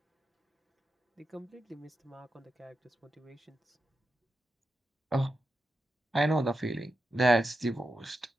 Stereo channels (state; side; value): normal; both; correlation 0.89